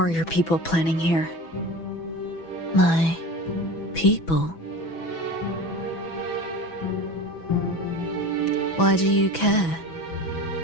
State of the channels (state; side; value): late; right; 6.1 ms